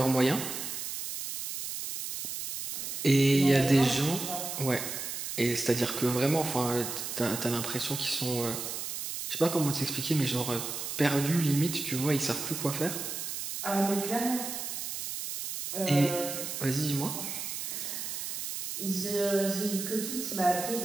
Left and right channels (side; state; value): right; noise; hiss, 5 dB below the sound